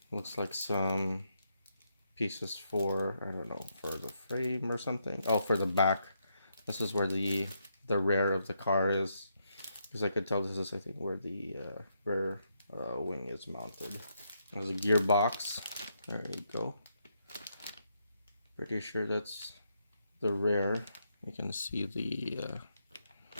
Looks like some pieces for, I don't know, for the frame or something. Oh, for the back. This is where the rear of the car is, because I could tell this is, I think, where the rear wing is mounted. There's a gearbox. There you go. Pretty sure that's the rear. You can see the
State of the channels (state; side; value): inverted; both; correlation -0.79